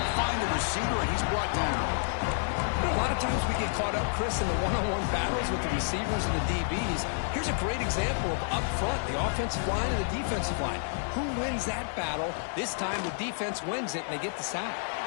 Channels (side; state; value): right; silent; digital silence